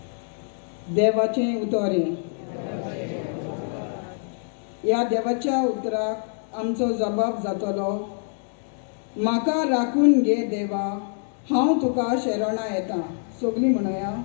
देवाचें उतोरें. ह्या देवाच्या उतराक आमचो जबाब जातलो, म्हाका राखून घे देवा, हांव तुका शरणा येता. सगळीं म्हणुया,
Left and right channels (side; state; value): right; silent; digital silence